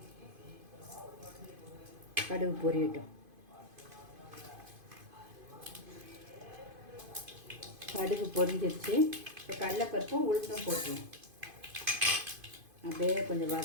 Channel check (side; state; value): left; late; 2.5 ms